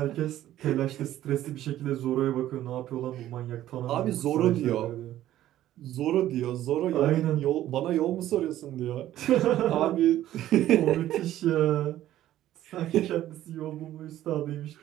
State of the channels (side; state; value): left; quieter; 13.3 dB